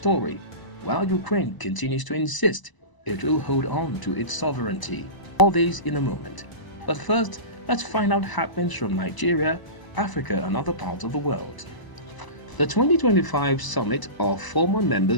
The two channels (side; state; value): right; late; 1.0 ms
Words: while Ukraine continues to insist it will hold on to its sovereignty. All this in a moment. But first, let's find out happenings from Nigeria, Africa, and other parts of the world. The 2025 summit of former